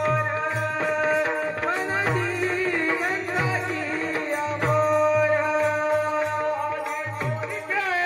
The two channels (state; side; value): identical; both; correlation 1.00